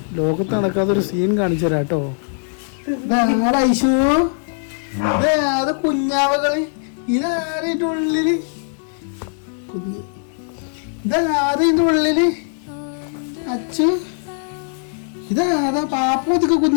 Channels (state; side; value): silent; right; 66 dB below the other